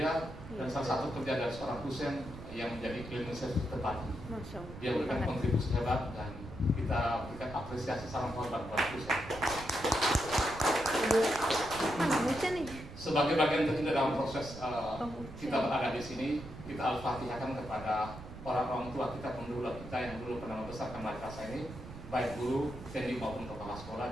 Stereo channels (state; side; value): noise; right; rumble, 13 dB below the sound